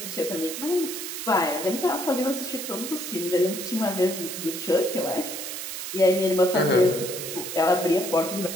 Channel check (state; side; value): noise; right; hiss, 6 dB below the sound